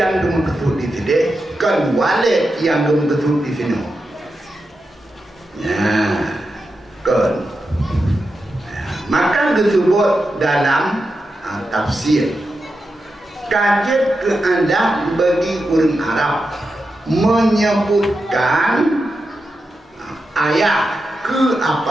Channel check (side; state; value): both; normal; correlation 0.89